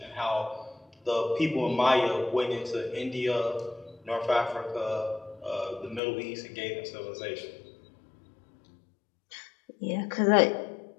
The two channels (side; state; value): right; drops out; at 6.0 s